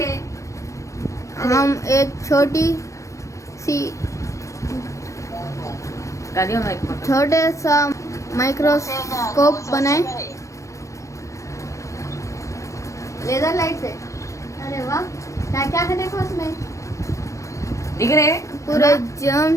हम एक छोटी सी छोटे सा माइक्रोस्कोप बनाए लेजर लाइट से। अरे वाह, क्या क्या है देखो उसमें, दिख रहे पूरे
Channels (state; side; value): late; right; 0.15 ms